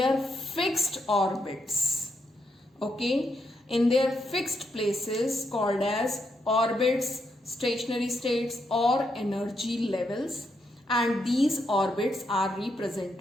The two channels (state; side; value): normal; both; correlation 0.80